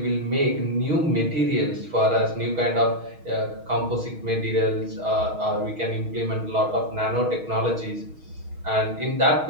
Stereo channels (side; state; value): left; late; 6.3 ms